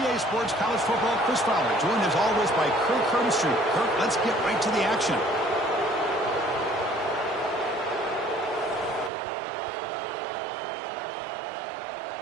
Sports College Football, Chris Fowler, joined as always by Kirk Hermstreet. Kirk, let's get right to the action.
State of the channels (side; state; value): left; drops out; at 9.1 s